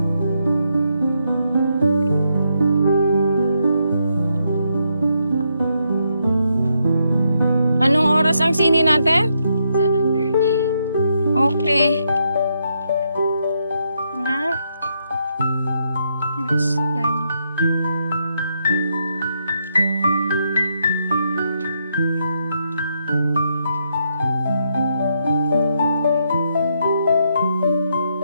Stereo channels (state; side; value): inverted; both; correlation -0.78